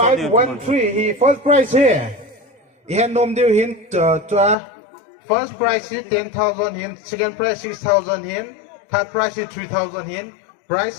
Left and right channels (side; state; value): right; drops out; at 4.5 s